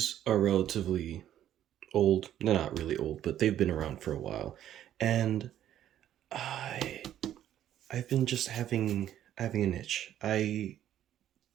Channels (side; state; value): left; quieter; 11.5 dB